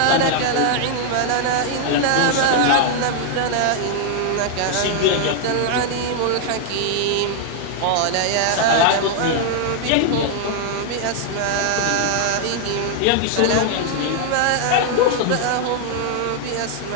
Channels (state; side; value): different; both; correlation 0.00